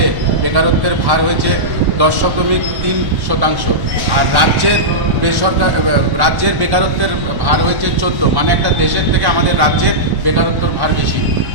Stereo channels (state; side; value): late; left; 1.1 ms